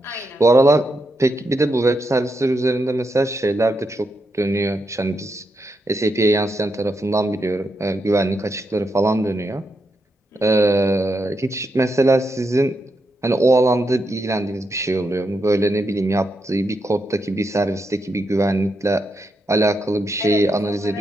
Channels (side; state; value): both; normal; correlation 0.83